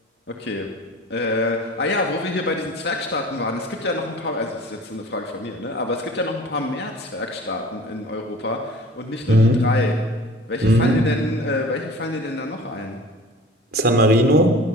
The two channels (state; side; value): normal; both; correlation 0.43